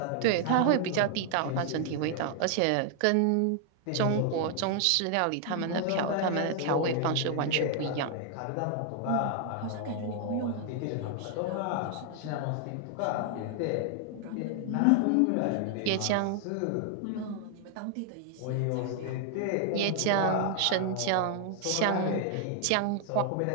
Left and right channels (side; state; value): both; different; correlation 0.00